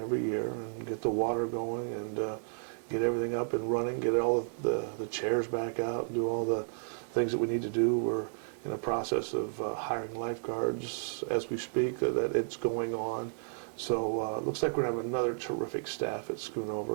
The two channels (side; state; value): left; silent; digital silence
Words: year, and get the water going and get everything up and running, get all of the chairs back out, and do all the things that we need to do. We're in a process of hiring lifeguards as we speak, that it's going on. So it looks like we're going to have another terrific staff at